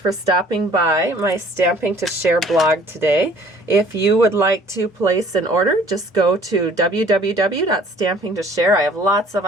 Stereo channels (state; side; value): normal; both; correlation 0.54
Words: for stopping by my Stamping to Share blog today. If you would like to place an order, just go to www.stampingtoshare. I have lots of